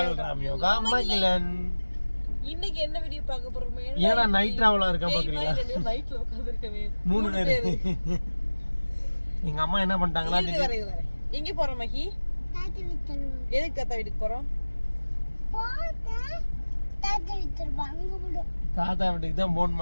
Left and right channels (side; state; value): both; inverted; correlation -1.00